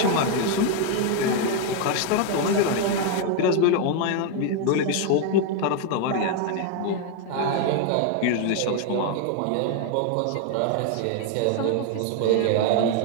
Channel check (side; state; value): both; different; correlation 0.00